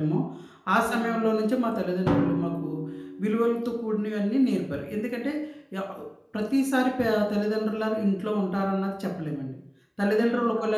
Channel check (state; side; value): identical; both; correlation 1.00